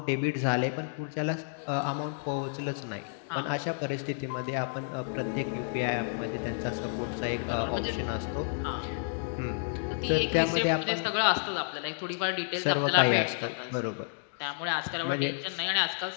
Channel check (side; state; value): right; silent; digital silence